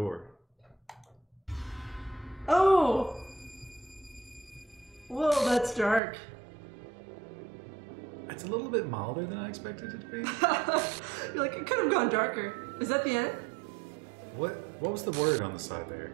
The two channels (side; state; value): left; drops out; at 6.0 s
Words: Oh! Whoa, that's dark. It's a little bit milder than I expected it to be. You're like, it could have gone darker. Is that the end? What was the word on the side there?